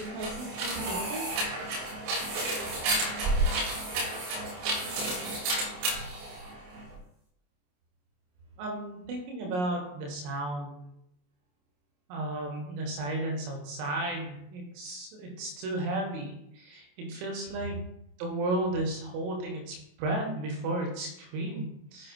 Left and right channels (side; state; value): left; late; 28 ms